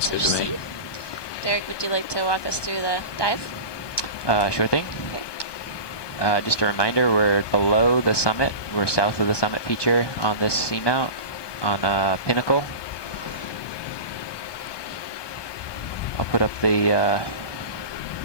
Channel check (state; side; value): late; right; 1.2 ms